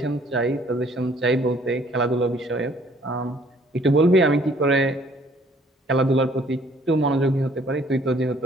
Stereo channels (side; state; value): both; normal; correlation 0.60